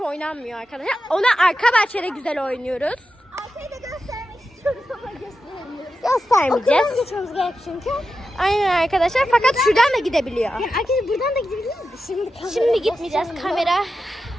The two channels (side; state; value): both; normal; correlation 0.90